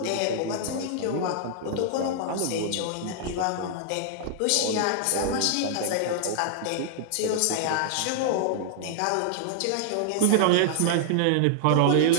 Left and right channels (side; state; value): both; different; correlation -0.01